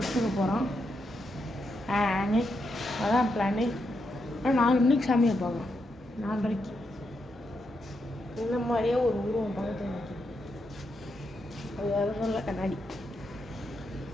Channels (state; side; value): normal; both; correlation 0.82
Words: போகிறோம். அதான் பிளானு. ஆனால் 4 மணிக்கு சாமியை பார்க்கலாம். 4:30 இந்த மாதிரியே ஒரு உருவம் பக்கத்தில் நிற்கிது. அது வேறு சொல்ல கண்ணாடி.